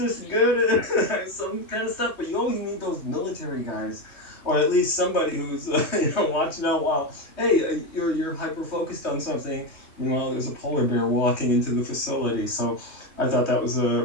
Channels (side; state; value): right; late; 3.2 ms